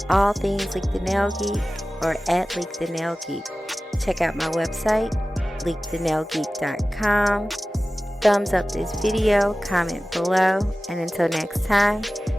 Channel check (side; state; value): both; normal; correlation 0.96